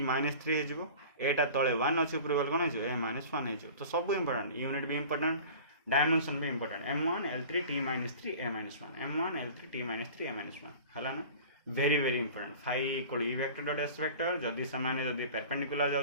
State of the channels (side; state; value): both; inverted; correlation -0.40